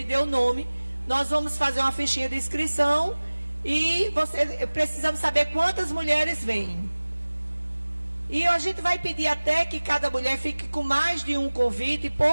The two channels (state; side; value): inverted; both; correlation -1.00